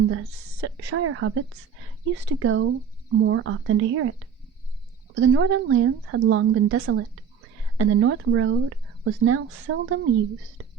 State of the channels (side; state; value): left; quieter; 7.3 dB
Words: the Shire hobbits used to go more often to hear it. For the northern lands had long been desolate, and the north road was now seldom used.